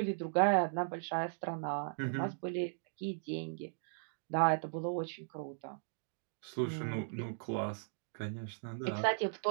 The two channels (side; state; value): left; silent; digital silence